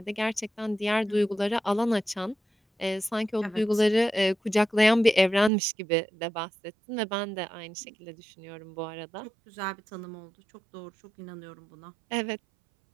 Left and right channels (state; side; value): drops out; left; at 5.5 s